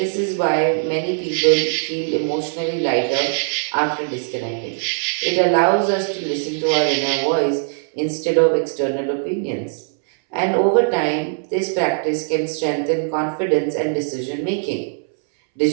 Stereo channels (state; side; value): silent; left; 65 dB below the other